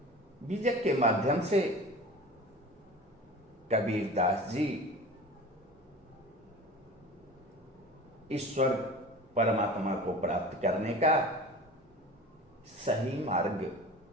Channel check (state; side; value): normal; both; correlation 0.37